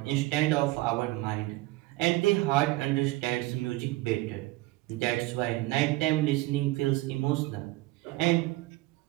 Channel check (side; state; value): left; quieter; 19.8 dB